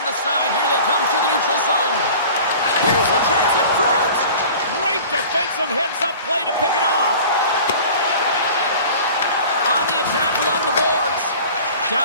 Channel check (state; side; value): inverted; both; correlation -0.42